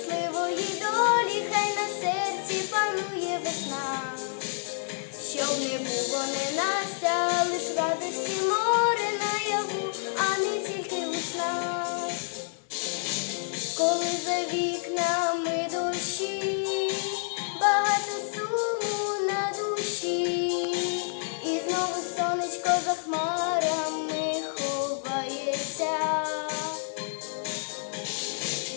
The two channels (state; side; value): silent; right; digital silence